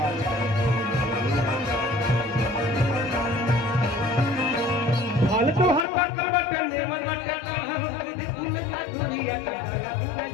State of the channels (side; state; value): right; drops out; at 5.9 s